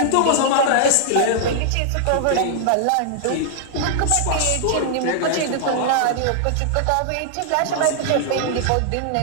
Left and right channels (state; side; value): different; both; correlation -0.01